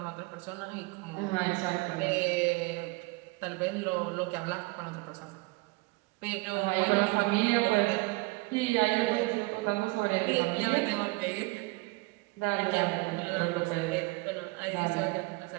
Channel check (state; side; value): quieter; left; 24.7 dB